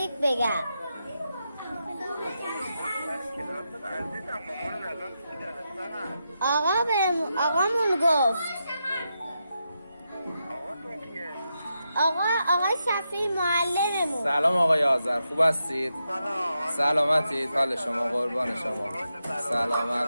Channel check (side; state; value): both; inverted; correlation -0.86